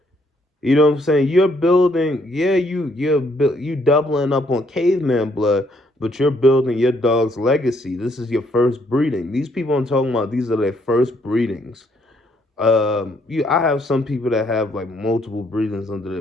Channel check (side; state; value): both; normal; correlation 0.69